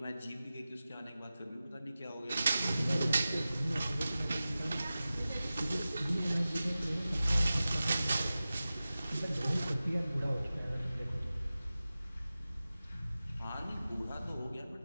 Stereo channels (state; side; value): inverted; both; correlation -0.96